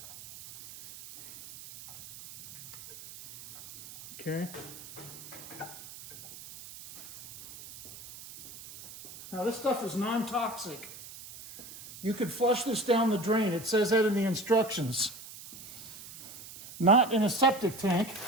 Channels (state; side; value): noise; right; hiss, 15 dB below the sound